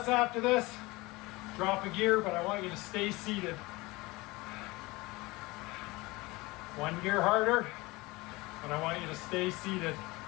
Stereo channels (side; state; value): right; quieter; 22.3 dB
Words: after this, drop a gear, but I want you to stay seated. One gear harder, but I want you to stay seated.